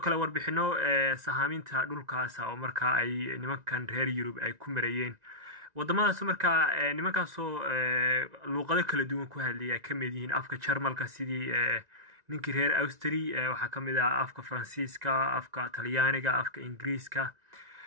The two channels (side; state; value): left; late; 1.9 ms